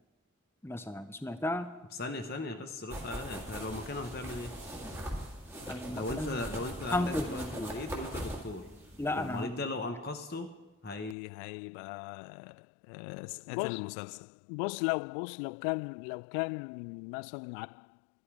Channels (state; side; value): drops out; right; at 11.2 s